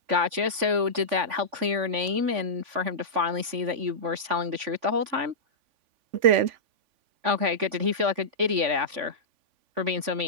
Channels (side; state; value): left; late; 3.5 ms